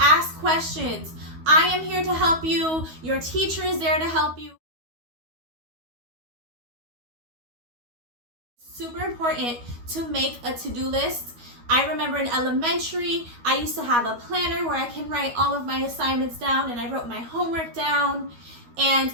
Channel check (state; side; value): late; left; 12 ms